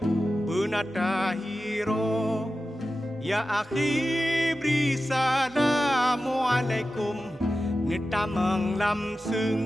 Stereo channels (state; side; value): normal; both; correlation 0.93